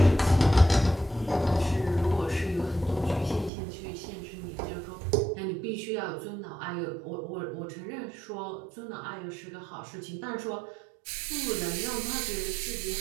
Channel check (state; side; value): drops out; left; at 3.5 s